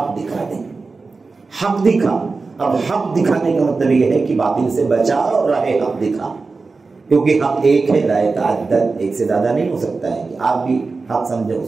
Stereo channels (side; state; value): left; quieter; 4.1 dB